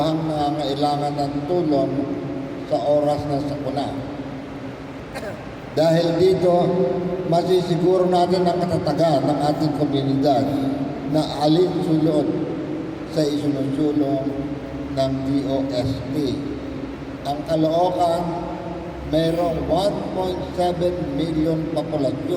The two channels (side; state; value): both; identical; correlation 1.00